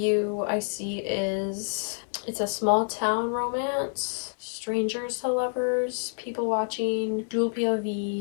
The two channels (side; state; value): right; silent; digital silence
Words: I see is it's a small town romance. Strangers to lovers, people watching, dual